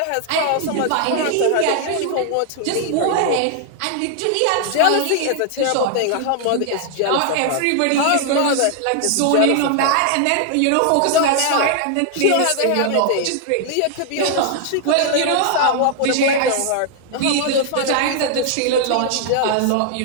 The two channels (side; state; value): both; different; correlation 0.00